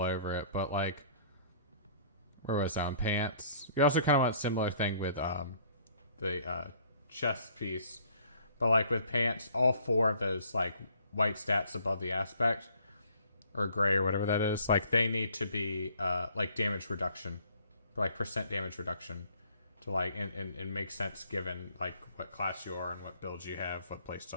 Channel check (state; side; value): inverted; both; correlation -0.58